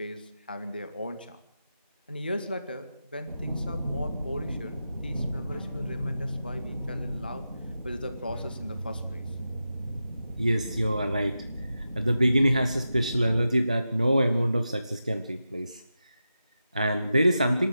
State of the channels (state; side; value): inverted; both; correlation -0.90